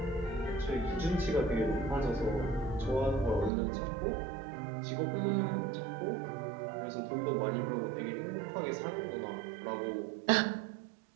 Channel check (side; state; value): left; drops out; at 3.5 s